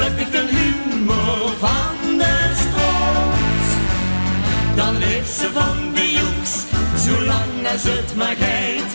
ik de humor van de stroot. Dan leeft ze van de joeks, zolang als het maar geit,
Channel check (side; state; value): both; inverted; correlation -1.00